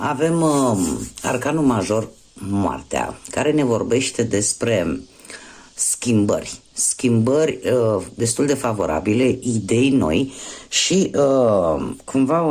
arcanul major, moartea, care ne vorbește despre schimbări destul de favorabile, idei noi și cumva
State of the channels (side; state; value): both; identical; correlation 1.00